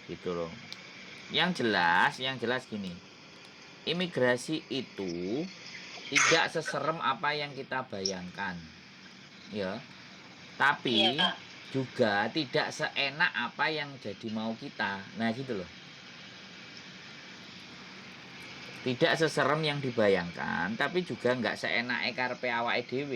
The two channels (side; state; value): both; identical; correlation 1.00